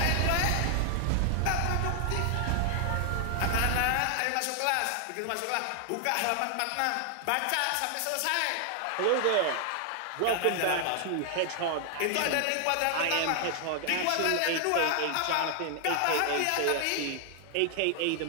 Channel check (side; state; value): both; different; correlation 0.00